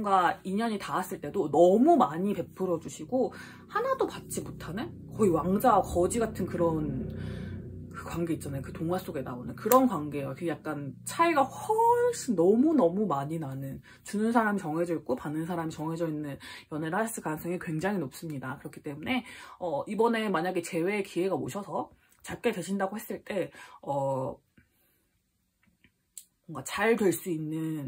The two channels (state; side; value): identical; both; correlation 1.00